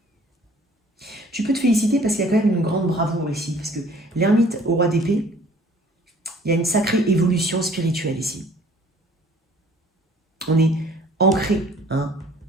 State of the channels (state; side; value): normal; both; correlation 0.54